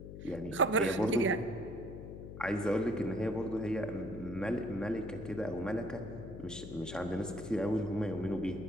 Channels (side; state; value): left; noise; hum, 10 dB below the sound